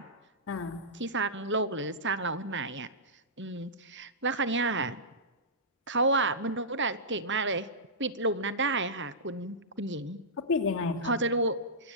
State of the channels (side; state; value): both; normal; correlation -0.17